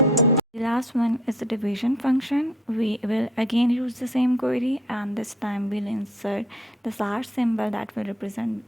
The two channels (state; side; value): normal; both; correlation 0.57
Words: The last one is the division function. We will again use the same query, and this time we'll insert the slash symbol that will represent